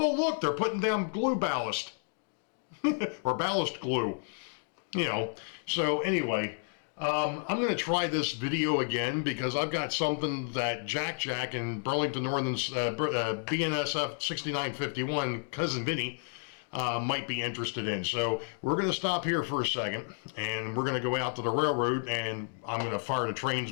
look, they're putting down glue ballast. Or ballast glue. So anyway, I'm going to try this video again because I've got something that Jack and Burlington Northern's BNSF 6951, Cousin Vinny, might be interested in. So we're going to stop here for a second, and we're going to go out to the railroad, and I'm going to fire the trains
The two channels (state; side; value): silent; right; 57 dB below the other